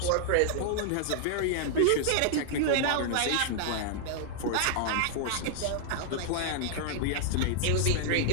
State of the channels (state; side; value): different; both; correlation -0.01